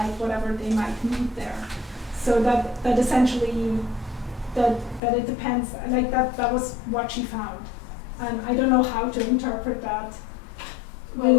whatever they might need there. So that essentially that it depends, like that was what she found, and I don't know how to interpret that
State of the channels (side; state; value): right; drops out; at 5.0 s